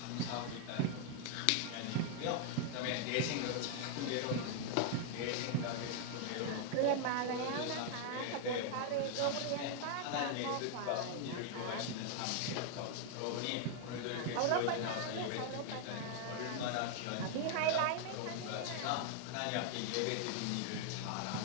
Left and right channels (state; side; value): different; both; correlation 0.00